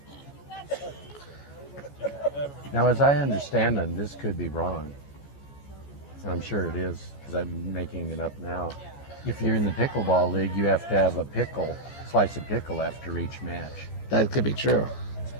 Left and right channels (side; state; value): right; late; 14 ms